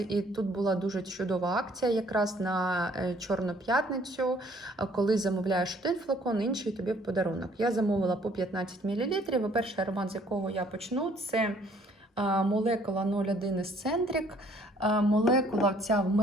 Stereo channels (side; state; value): both; normal; correlation 0.60